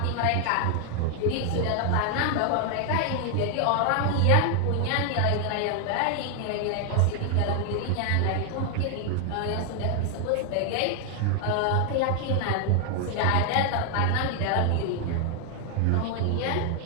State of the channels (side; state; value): both; different; correlation 0.00